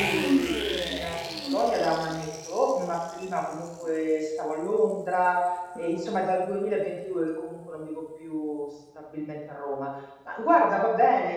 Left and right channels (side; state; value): both; identical; correlation 1.00